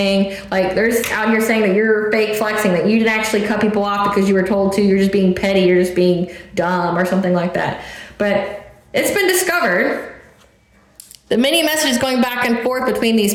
Like, there's out here saying that you're fake flexing, that you didn't actually cut people off because you were told to, you're just being petty, you're just being dumb or something like that. But it's been discovered, the many messages going back and forth between these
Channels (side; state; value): both; identical; correlation 1.00